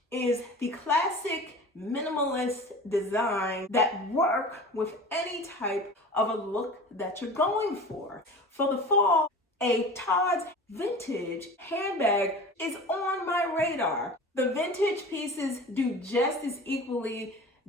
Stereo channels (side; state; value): both; normal; correlation 0.37